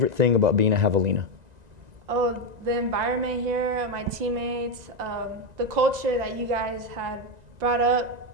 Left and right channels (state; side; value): late; left; 1.9 ms